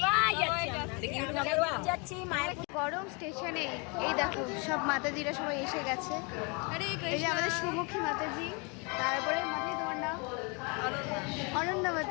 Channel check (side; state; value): right; quieter; 32.2 dB